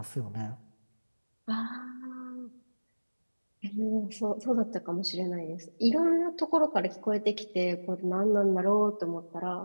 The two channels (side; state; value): both; inverted; correlation -1.00